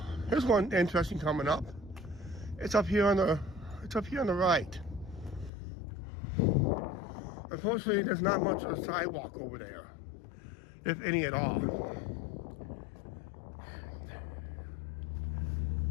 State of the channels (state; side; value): drops out; right; at 5.5 s